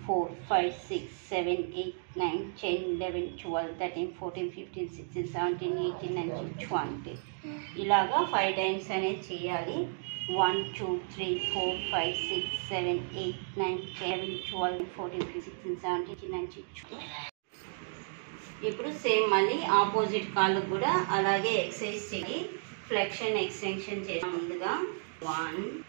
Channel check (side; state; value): left; silent; digital silence